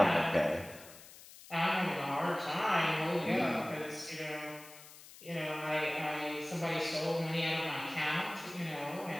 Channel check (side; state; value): left; noise; hiss, 18 dB below the sound